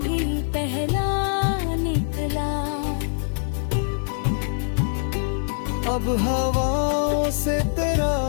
भी पहला निकला। अब हवाओं से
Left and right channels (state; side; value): silent; right; digital silence